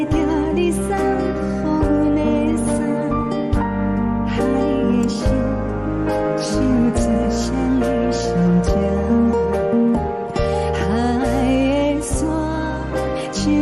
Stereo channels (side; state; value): both; identical; correlation 1.00